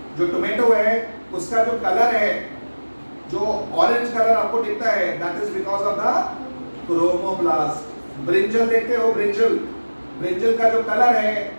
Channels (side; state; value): both; inverted; correlation -1.00